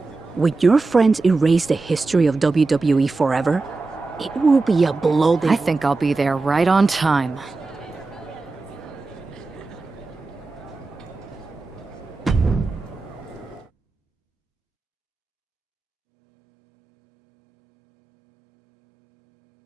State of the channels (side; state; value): left; quieter; 3.7 dB